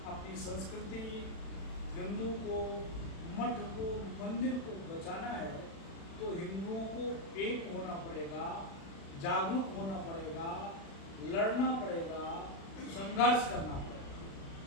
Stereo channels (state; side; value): late; right; 36 ms